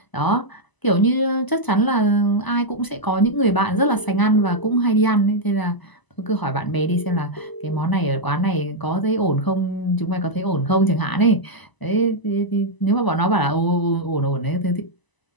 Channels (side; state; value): right; late; 1.0 ms